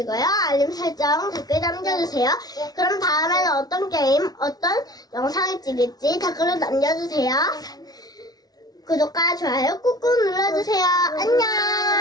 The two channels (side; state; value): right; late; 0.19 ms